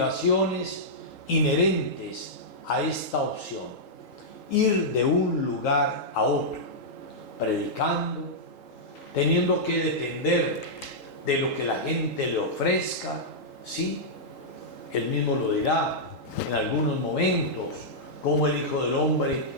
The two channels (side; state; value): right; late; 3.8 ms